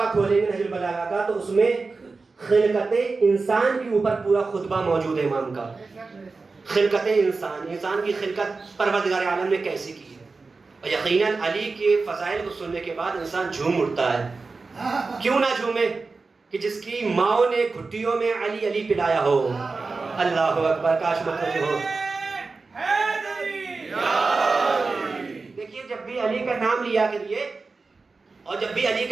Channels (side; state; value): left; quieter; 4.1 dB